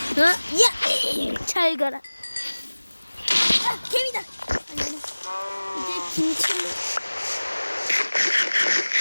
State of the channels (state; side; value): inverted; both; correlation -1.00